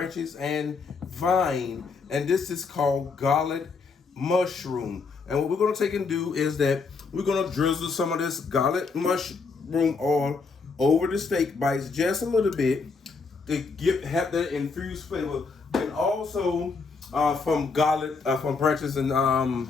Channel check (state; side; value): quieter; right; 4.6 dB